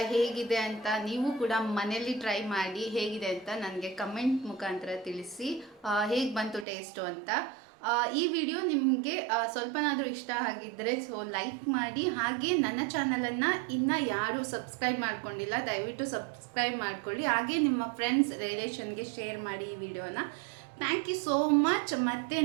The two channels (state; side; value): drops out; left; at 6.7 s